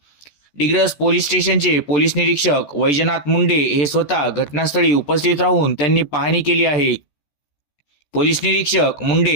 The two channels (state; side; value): late; right; 14 ms